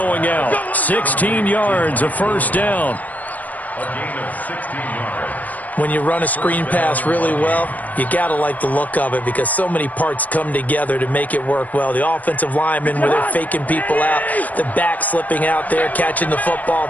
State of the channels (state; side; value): late; right; 0.076 ms